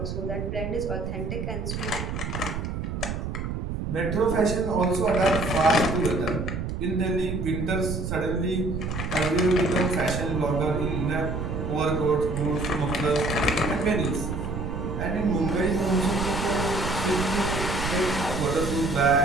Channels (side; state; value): right; noise; rumble, 4 dB below the sound